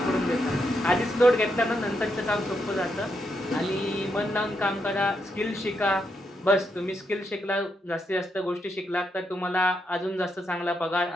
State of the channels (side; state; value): both; normal; correlation 0.81